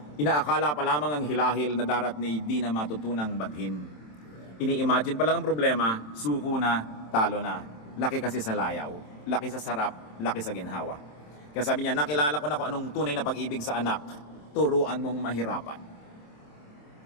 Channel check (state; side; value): late; right; 27 ms